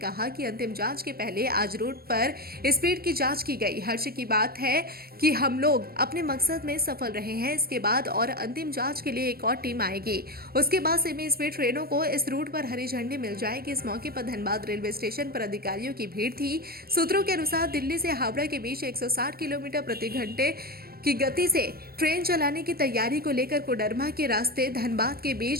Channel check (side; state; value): left; late; 0.44 ms